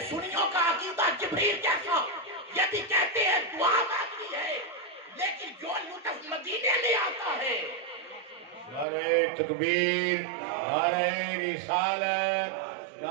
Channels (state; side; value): drops out; left; at 8.8 s